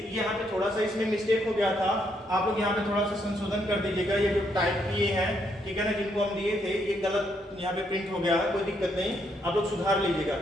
यहाँ पे थोड़ा सा इसमें मिस्टेक हो गया था, आप लोग यहाँ पे थोड़ा सा संशोधन कर दीजिएगा। ये जो टाइप किए हैं, ठीक है ना, जिनको हम दिए थे, ये गलत यहाँ पे प्रिंट हो गया है, कोई दिक्कत नहीं, आप लोग सुधार लीजिएगा।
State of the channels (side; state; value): both; normal; correlation 0.74